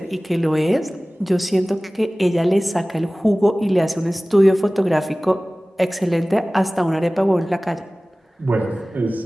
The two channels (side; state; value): both; normal; correlation 0.98